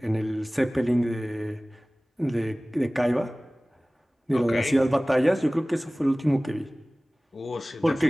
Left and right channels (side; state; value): both; normal; correlation 0.98